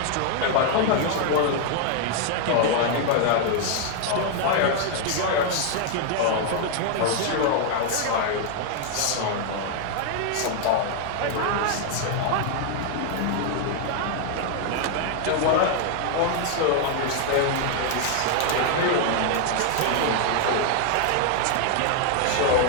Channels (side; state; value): both; different; correlation 0.00